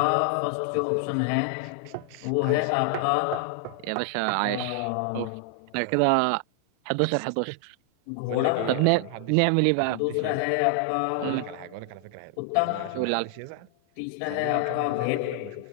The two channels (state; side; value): different; both; correlation 0.00